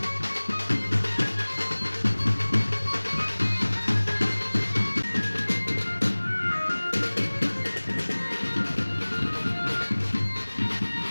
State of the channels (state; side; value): inverted; both; correlation -1.00